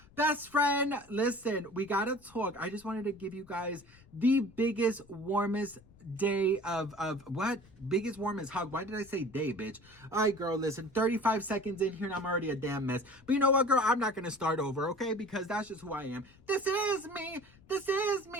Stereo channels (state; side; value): noise; left; rumble, 26 dB below the sound